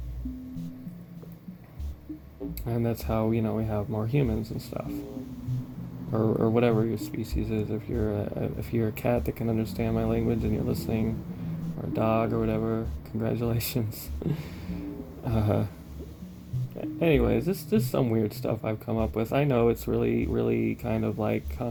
And that's how, you know, we have more humans and stuff. Or whatever your species is. If you're a cat that can understand my language and you're listening, or a dog or whatever, congratulations. uh, Anyways, this is some weird stuff I've come up with. I know it's really, really kind of like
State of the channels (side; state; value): both; identical; correlation 1.00